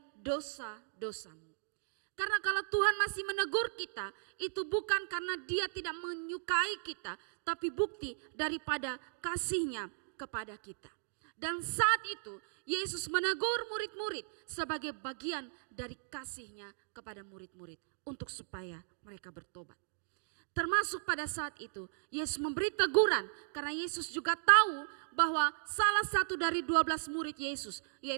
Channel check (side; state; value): left; silent; digital silence